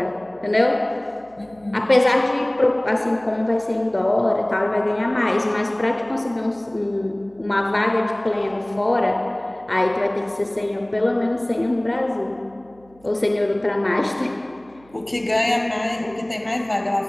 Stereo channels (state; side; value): noise; right; hum, 29 dB below the sound